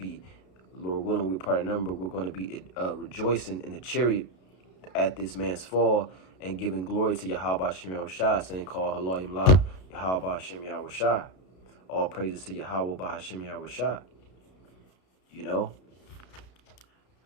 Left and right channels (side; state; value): right; late; 32 ms